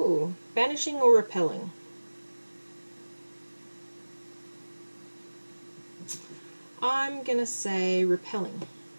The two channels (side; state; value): both; inverted; correlation -1.00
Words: Banishing or repelling? I'm gonna say repelling.